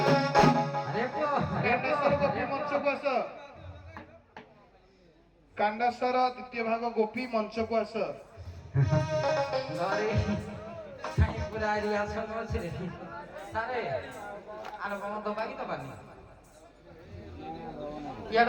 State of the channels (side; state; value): both; identical; correlation 1.00